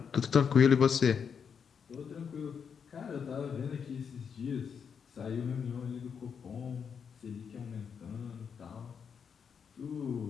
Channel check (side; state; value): right; quieter; 6.8 dB